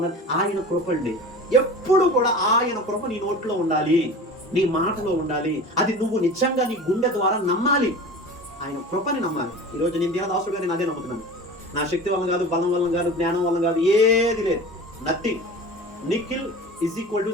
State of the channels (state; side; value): normal; both; correlation 0.36